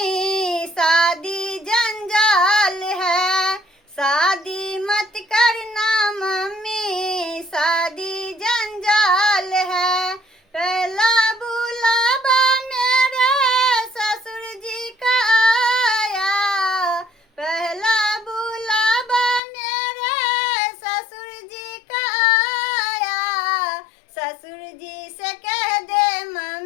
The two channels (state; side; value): drops out; right; at 19.4 s